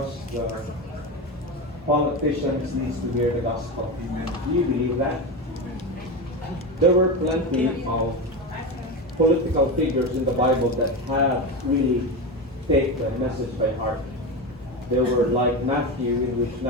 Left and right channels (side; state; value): both; normal; correlation 0.19